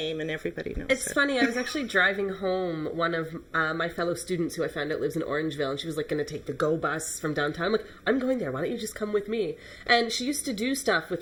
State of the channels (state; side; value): identical; both; correlation 1.00